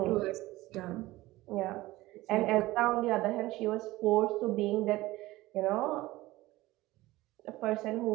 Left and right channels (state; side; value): quieter; left; 18.3 dB